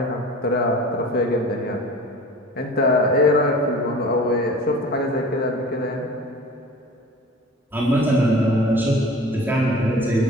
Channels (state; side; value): normal; both; correlation 0.42